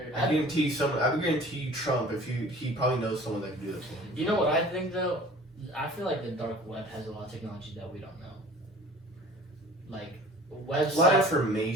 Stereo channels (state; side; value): normal; both; correlation 0.46